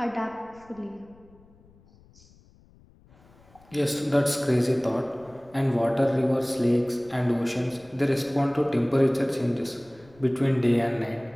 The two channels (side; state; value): left; noise; rumble, 27 dB below the sound